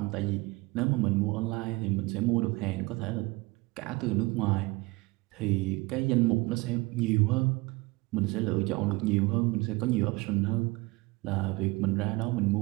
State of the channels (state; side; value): quieter; left; 23.3 dB